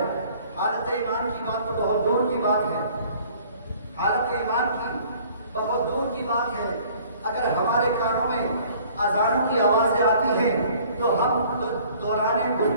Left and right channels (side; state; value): both; inverted; correlation -0.54